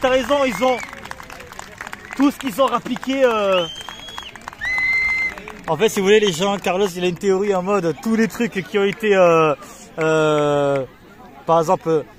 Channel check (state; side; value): identical; both; correlation 1.00